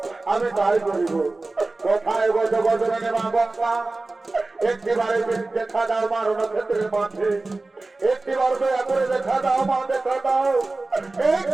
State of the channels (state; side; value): quieter; left; 3.3 dB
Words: আমি তাই করিব। কোথায় গজ গজনে মা গঙ্গা, একটিবারে দেখা দাও মা রণক্ষেত্রের মাঠে, একটিবার দয়া করে দেখা দাও মা, দেখা দাও